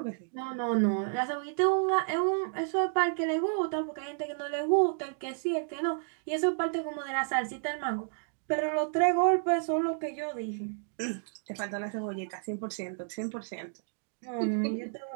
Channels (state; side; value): silent; left; digital silence